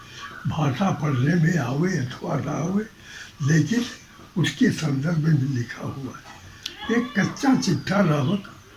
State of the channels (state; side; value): identical; both; correlation 1.00